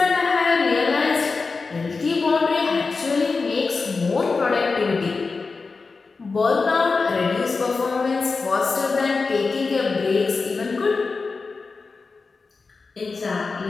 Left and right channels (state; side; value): quieter; right; 4.3 dB